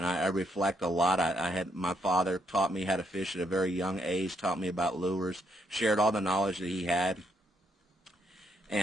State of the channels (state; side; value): normal; both; correlation 0.75